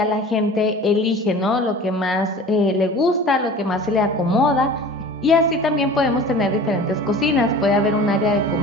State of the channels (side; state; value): both; normal; correlation 0.40